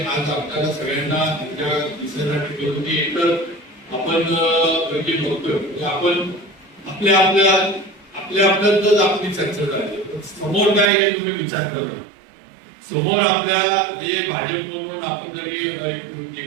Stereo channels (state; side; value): drops out; left; at 10.9 s